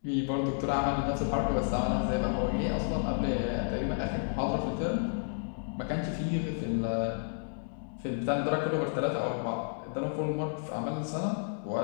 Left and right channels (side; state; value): right; silent; digital silence